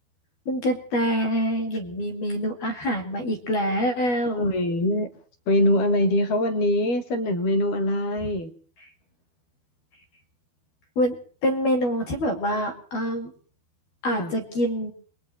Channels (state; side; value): late; right; 12 ms